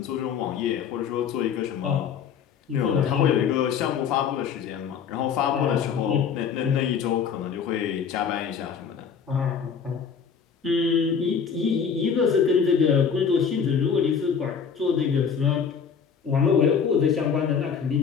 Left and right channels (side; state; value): right; quieter; 6.8 dB